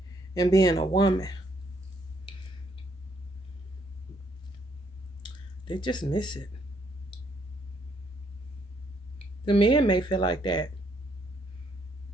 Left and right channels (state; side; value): normal; both; correlation 0.71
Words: and being a woman. They just miss it. The men may feel like that.